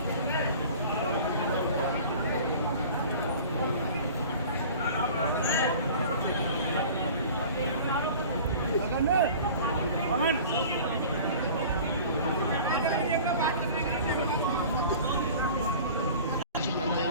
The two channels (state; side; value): inverted; both; correlation -0.43